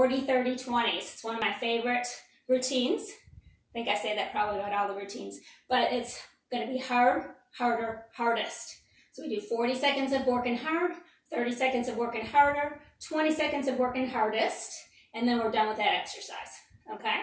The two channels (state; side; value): identical; both; correlation 1.00